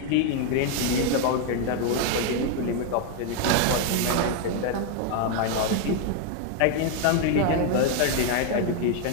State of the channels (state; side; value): different; both; correlation 0.01